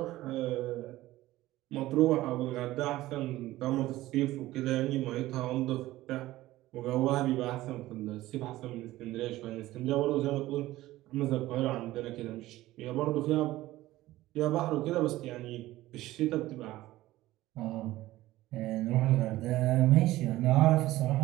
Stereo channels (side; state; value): left; quieter; 16.5 dB